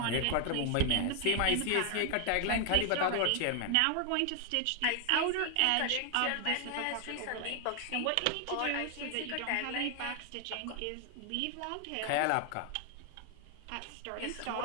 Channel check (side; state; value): both; different; correlation 0.00